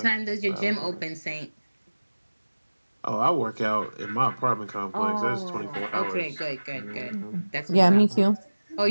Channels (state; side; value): inverted; both; correlation -1.00